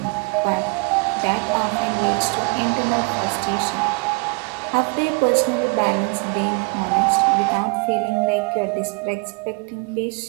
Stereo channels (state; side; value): quieter; left; 32.1 dB